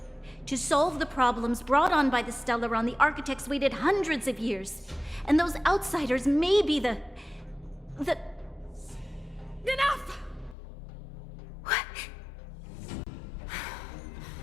To solve the problems brought on by the Stellaron, the architects waited hundreds of years, and those outsiders may be the... Enough! What?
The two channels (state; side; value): drops out; right; at 10.6 s